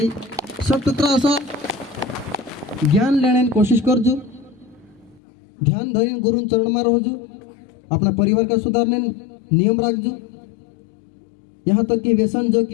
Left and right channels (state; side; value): drops out; right; at 5.2 s